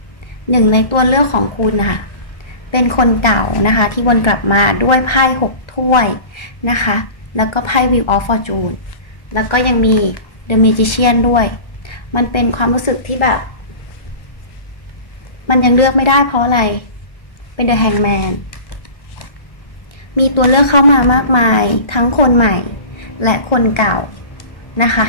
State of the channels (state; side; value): late; right; 1.4 ms